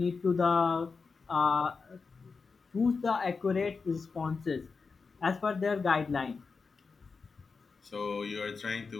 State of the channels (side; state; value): right; quieter; 4.7 dB